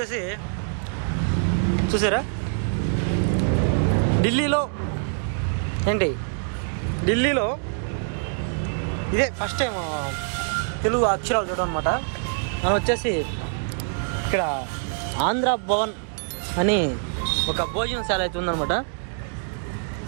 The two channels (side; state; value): left; silent; 62 dB below the other